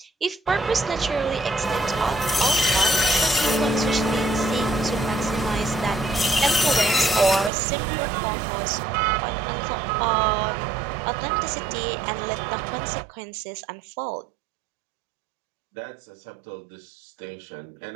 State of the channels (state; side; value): drops out; left; at 7.5 s